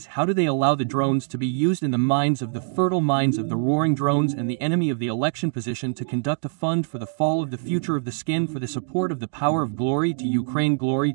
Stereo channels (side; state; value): left; silent; digital silence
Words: How do they allow the drones to be used in the minds of the fertile minds of the roaring drones and the enemy of the election position to conduct a fund for the fall of the future of the skin for the support of the power of glory to Ukraine, glory